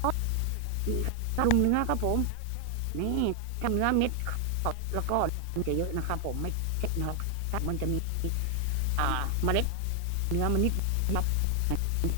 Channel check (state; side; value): different; both; correlation 0.00